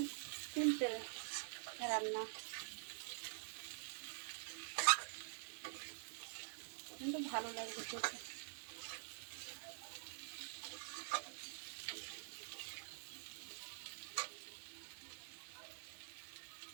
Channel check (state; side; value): silent; left; digital silence